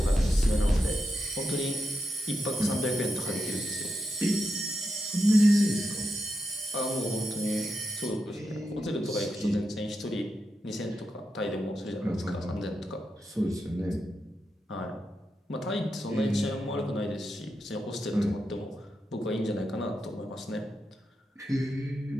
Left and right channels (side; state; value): both; normal; correlation 0.86